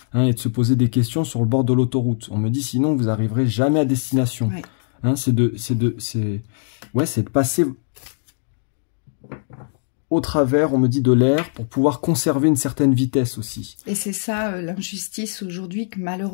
Et de se poser des questions sur le bord de l'autoroute. On me dit sinon vous n'arriverez jamais à destination. Ouais. C'est de passer au travers, on me dit, de l'air pour pouvoir conserver une certaine vitesse aussi. Et c'est ça l'injustice aujourd'hui que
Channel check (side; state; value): right; silent; digital silence